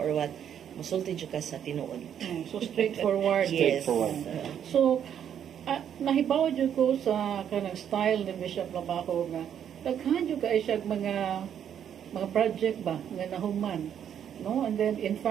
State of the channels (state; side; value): quieter; left; 9.1 dB